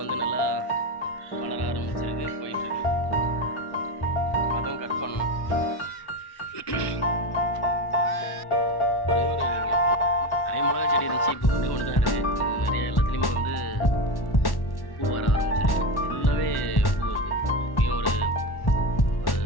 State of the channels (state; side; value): late; right; 1.1 ms